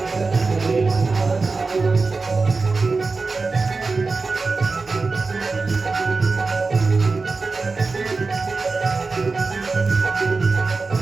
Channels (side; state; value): left; quieter; 4.0 dB